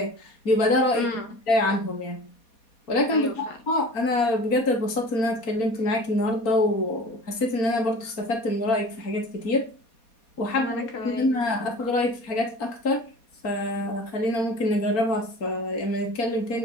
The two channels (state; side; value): late; right; 4.2 ms